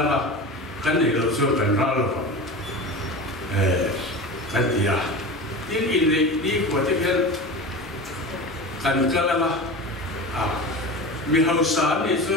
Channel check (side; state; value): both; normal; correlation 0.30